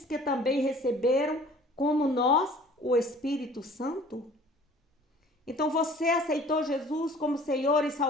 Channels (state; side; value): normal; both; correlation 0.50